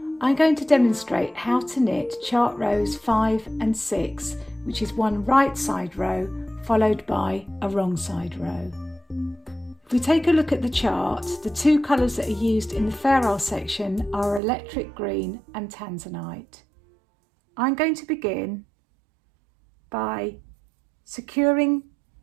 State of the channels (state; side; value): drops out; left; at 14.4 s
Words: I'm going to demonstrate how to knit chart rows 5 and 6, which is one right side row followed by a wrong side row. If we take a look at the chart, the two colours that are used in the Fairisle section are electric green and tanzanite. I'm going to begin by securing